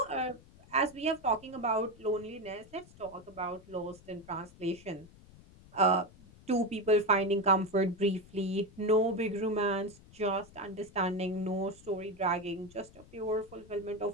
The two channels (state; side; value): noise; left; rumble, 22 dB below the sound